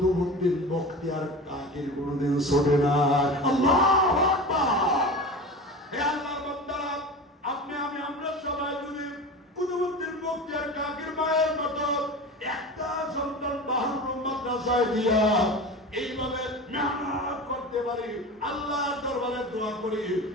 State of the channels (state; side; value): normal; both; correlation 0.32